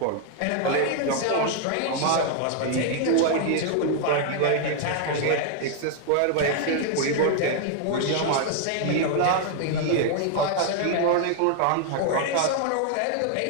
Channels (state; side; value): different; both; correlation 0.00